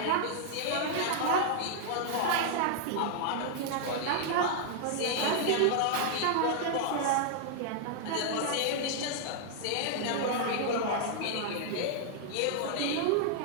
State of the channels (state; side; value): different; both; correlation 0.00